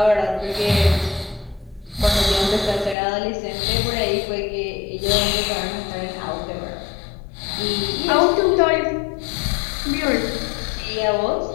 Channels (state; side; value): drops out; right; at 3.0 s